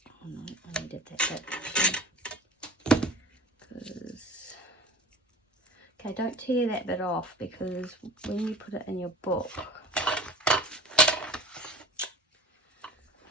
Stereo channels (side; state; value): both; normal; correlation 0.37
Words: Oh no, I needed that bit. Because, okay, don't tear that bit off, because when you put it in your book,